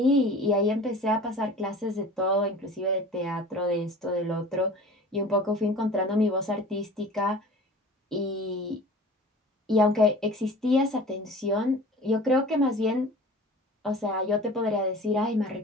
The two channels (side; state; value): both; normal; correlation 0.42